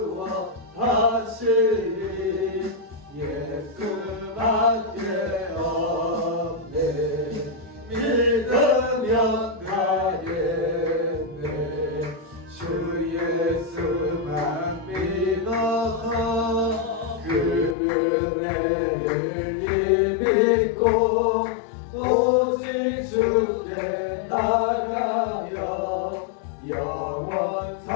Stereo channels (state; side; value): drops out; right; at 17.8 s